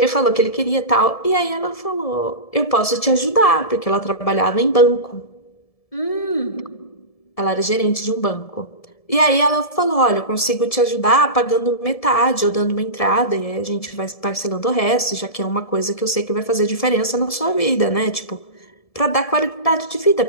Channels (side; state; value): right; late; 1.7 ms